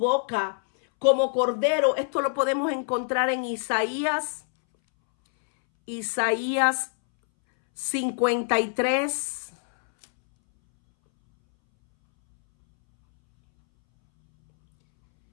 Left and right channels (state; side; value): silent; right; 62 dB below the other